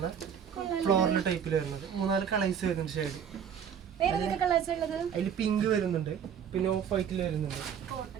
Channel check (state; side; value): quieter; left; 8.0 dB